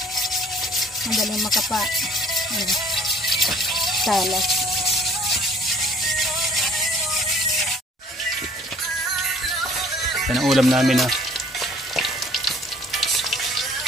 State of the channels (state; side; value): normal; both; correlation 0.55